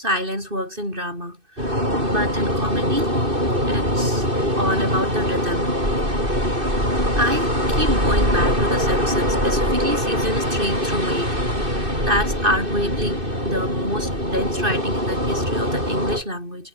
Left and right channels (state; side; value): late; left; 2.6 ms